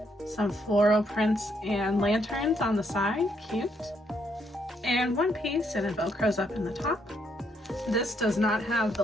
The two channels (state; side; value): normal; both; correlation 0.74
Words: Some floral prints and lanterns on the side, cute. And one piece and it velcros up in the top. This does not have the